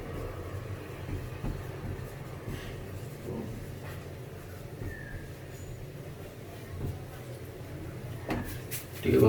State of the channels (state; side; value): identical; both; correlation 1.00